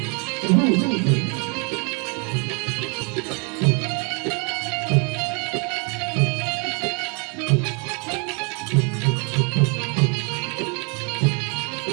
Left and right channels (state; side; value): quieter; left; 33.0 dB